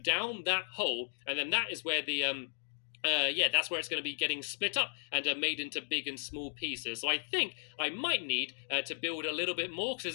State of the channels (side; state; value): right; silent; digital silence